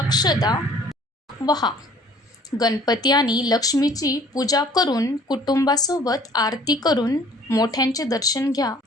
वहा. गणपती आणि लक्ष्मीची पूजा करून कुटुंबासोबत आरती करून मोठ्यांचे दर्शन घ्या.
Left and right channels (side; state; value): both; normal; correlation 0.53